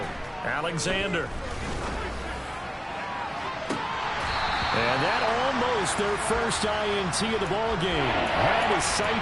Alexander. And that almost their first INT of the ball game. Had his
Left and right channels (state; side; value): identical; both; correlation 1.00